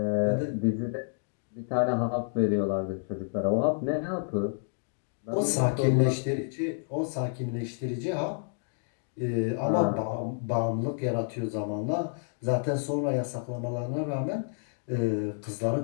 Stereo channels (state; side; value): silent; right; digital silence